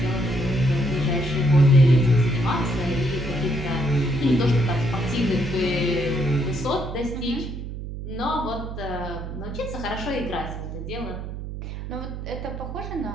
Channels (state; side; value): noise; right; hum, 7 dB below the sound